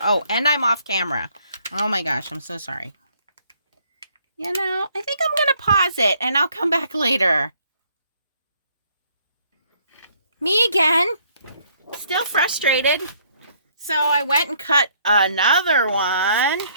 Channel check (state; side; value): inverted; both; correlation -0.65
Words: Oh, and I'm off camera. Oh my gosh, I'm so sorry. You know, I think I'm going to pause it and I'll come back later. Me again. Still frustrated. So I went and cut another one.